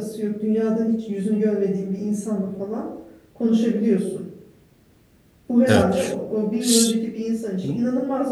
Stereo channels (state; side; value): identical; both; correlation 1.00